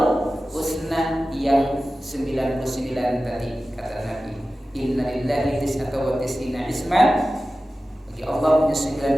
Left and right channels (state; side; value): normal; both; correlation 0.95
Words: husna yang 99 tadi, kata Nabi. Inna lillahi tis'ata wa tis'ina isman. Bagi Allah punya